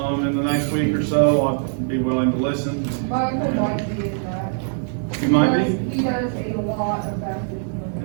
the next week or so, I'll be willing to listen. Michael might be in that. You might be? He does a lot of that.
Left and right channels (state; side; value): silent; left; 64 dB below the other